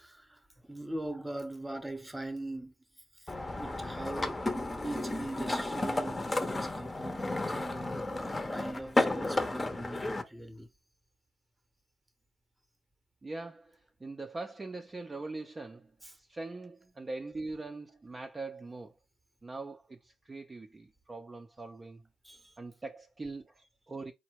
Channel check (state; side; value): normal; both; correlation 0.94